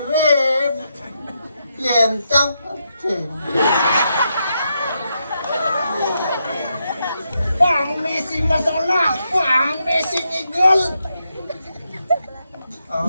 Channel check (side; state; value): both; inverted; correlation -0.82